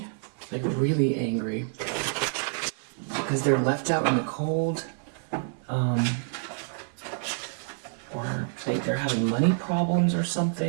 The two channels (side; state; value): left; silent; digital silence